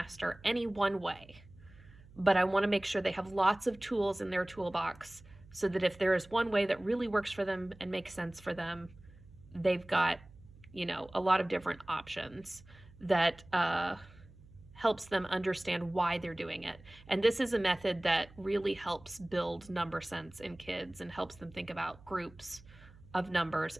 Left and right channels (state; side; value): noise; right; hum, 22 dB below the sound